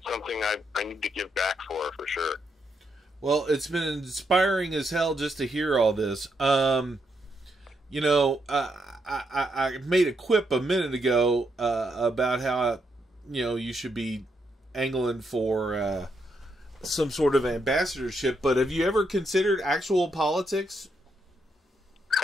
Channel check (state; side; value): normal; both; correlation 0.79